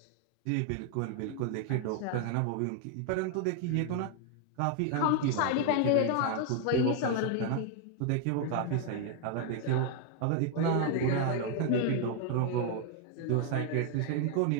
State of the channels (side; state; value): both; different; correlation 0.00